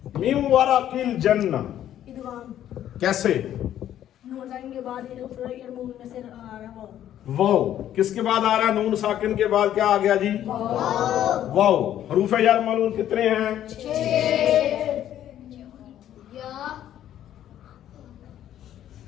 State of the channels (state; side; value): quieter; right; 11.4 dB